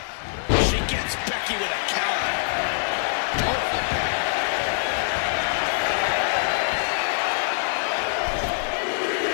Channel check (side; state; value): right; silent; digital silence